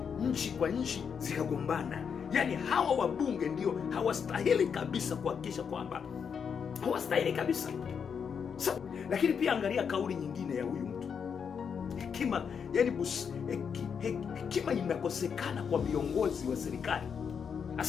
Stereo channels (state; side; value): quieter; right; 6.8 dB